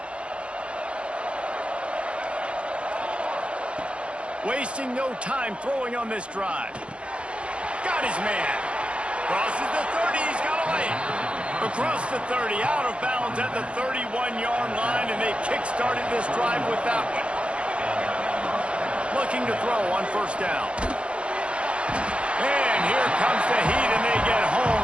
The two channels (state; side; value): late; left; 0.059 ms